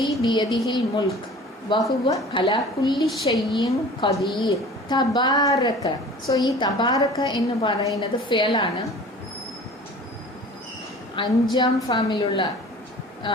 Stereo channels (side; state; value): both; normal; correlation 0.43